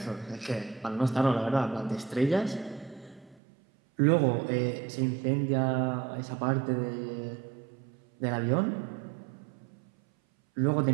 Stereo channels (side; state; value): left; drops out; at 3.4 s